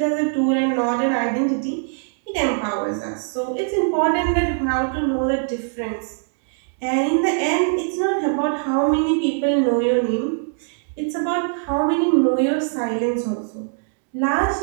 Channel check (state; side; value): silent; left; 64 dB below the other